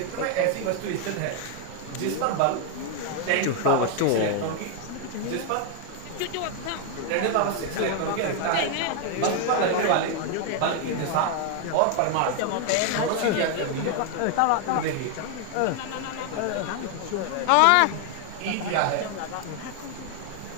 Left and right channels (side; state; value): both; different; correlation 0.00